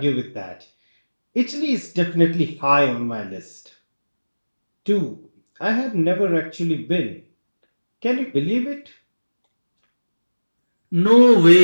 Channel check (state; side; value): inverted; both; correlation -1.00